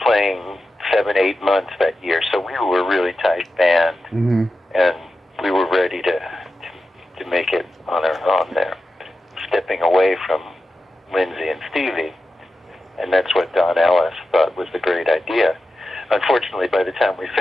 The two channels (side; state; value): both; normal; correlation 0.92